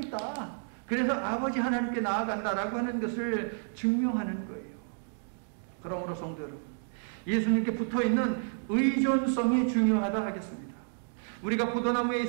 그래서 아버지 하나님께 나아간다라고 하는 것을 증명하는 거예요. 그러므로 성도 여러분, 예수님께 붙어있는 의존성이 중요하다 하겠습니다. 우리가 포도나무에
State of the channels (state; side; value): silent; left; digital silence